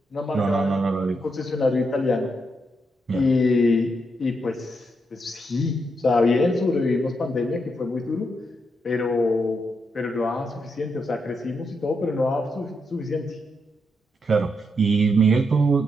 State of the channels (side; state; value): both; normal; correlation 0.81